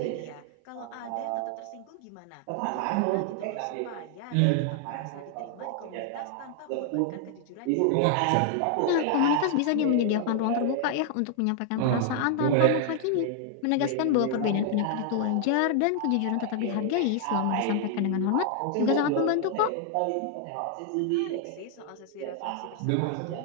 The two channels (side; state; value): both; different; correlation 0.00